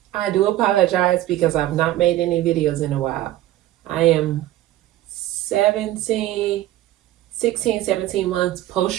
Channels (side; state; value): left; quieter; 14.6 dB